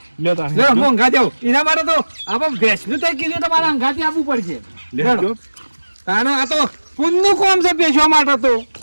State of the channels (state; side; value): inverted; both; correlation -1.00